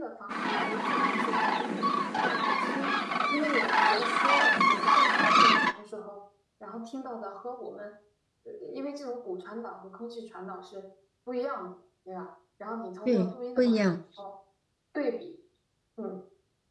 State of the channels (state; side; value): identical; both; correlation 1.00